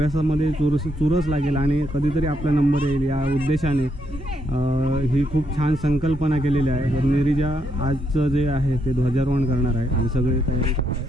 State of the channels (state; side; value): normal; both; correlation 0.77